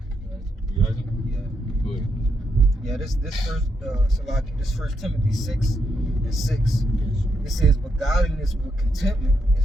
You got it? Yeah. Good. Yeah, this first Timothy 6:6. It says, but godliness with contentment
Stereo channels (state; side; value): normal; both; correlation 0.80